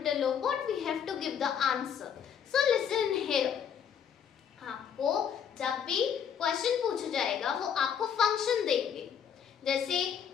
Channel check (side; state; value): right; quieter; 8.0 dB